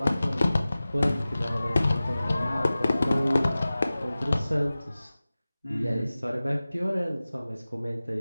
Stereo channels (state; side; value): inverted; both; correlation -0.97